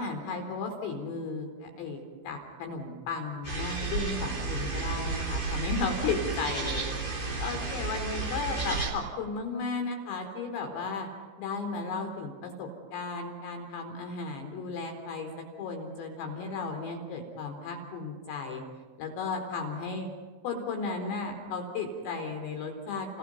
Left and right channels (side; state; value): right; late; 15 ms